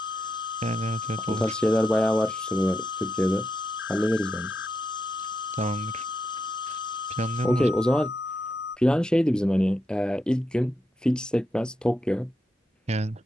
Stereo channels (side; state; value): both; normal; correlation 0.84